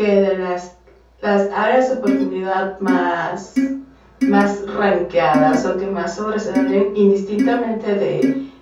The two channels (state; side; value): identical; both; correlation 1.00